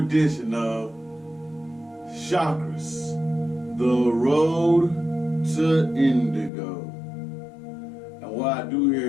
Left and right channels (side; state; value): right; drops out; at 6.5 s